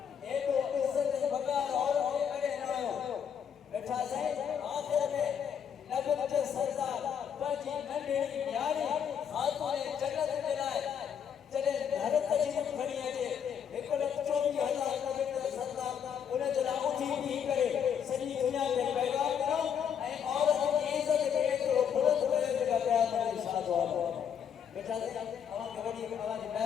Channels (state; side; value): quieter; right; 8.0 dB